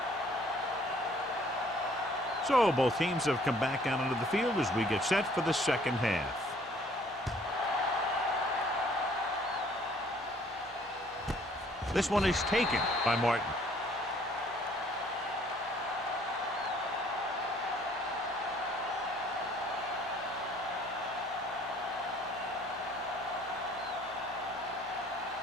So both teams have come back out onto the field as we get set for the second half. This one is taken by Martin.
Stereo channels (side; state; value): both; normal; correlation 0.59